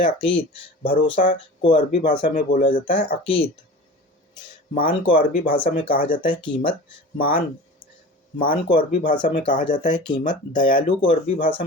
हैं अकीद। भरोसा को अरबी भाषा में बोला जाता है अकीद। मान को अरबी भाषा में कहा जाता है कीमत। मान को अरबी भाषा में कहा जाता है कीमत। दयालु को अरबी भाषा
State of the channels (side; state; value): both; normal; correlation 0.36